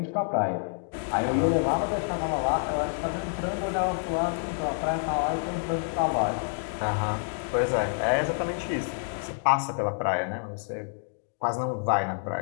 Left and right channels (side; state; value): right; silent; digital silence